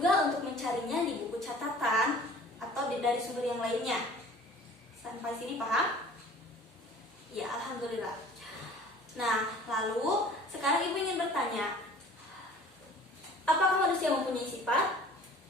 untuk mencarinya di buku catatan atau dari sumber yang lainnya. Sampai sini paham? Ya, alhamdulillah. Nah, lalu sekarang Ibu ingin bertanya, apakah manusia mempunyai sifat?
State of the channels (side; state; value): both; normal; correlation 0.47